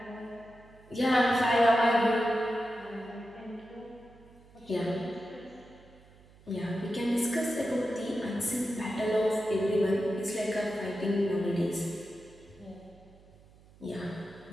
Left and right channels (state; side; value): noise; right; hum, 25 dB below the sound